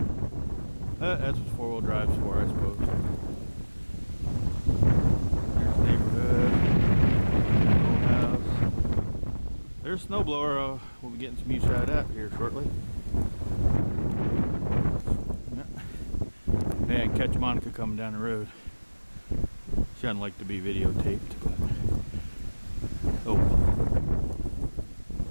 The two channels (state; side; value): inverted; both; correlation -1.00